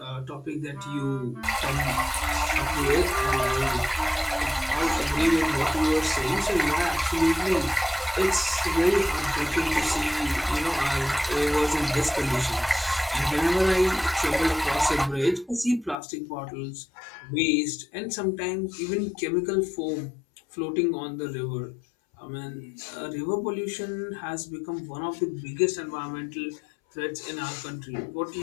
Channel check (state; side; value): drops out; right; at 16.0 s